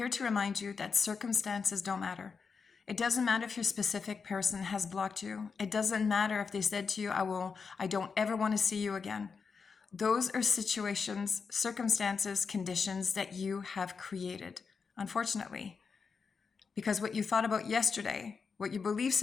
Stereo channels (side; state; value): right; quieter; 5.4 dB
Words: to remind you that circumstances don't matter. It doesn't matter if your specific person has blocked you. It doesn't matter if they said to you, I don't ever want to see you again. Those are situations, circumstances, conditions that you have created, unfortunately. Because what you thought about yesterday, what your belief